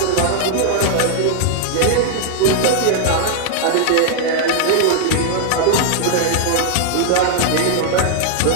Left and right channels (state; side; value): different; both; correlation 0.00